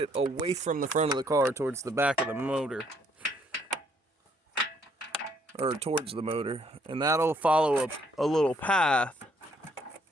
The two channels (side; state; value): both; normal; correlation 0.67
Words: away from the front of the car towards the back of the motor. Or towards the motor. And that'll follow a little path.